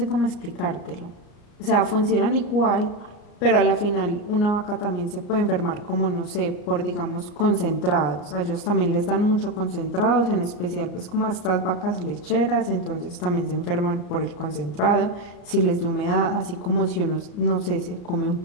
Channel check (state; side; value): late; right; 34 ms